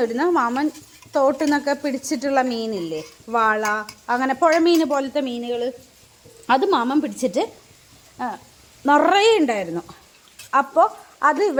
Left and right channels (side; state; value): both; identical; correlation 1.00